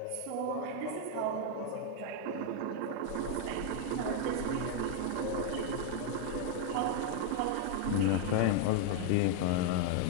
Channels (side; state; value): both; different; correlation 0.00